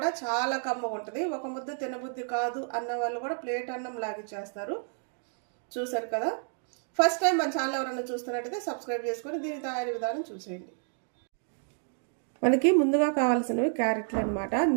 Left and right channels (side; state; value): left; silent; 58 dB below the other